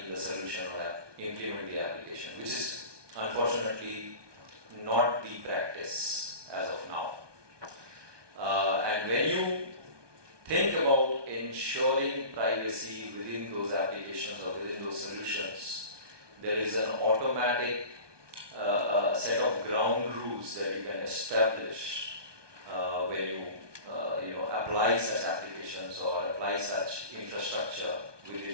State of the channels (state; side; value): late; left; 1.2 ms